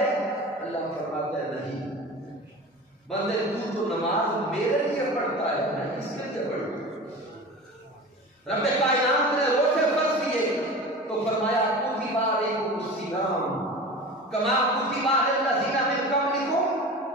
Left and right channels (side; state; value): both; normal; correlation 0.34